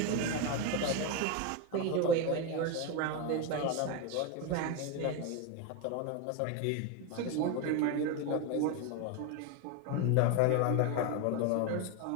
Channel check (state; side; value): different; both; correlation 0.03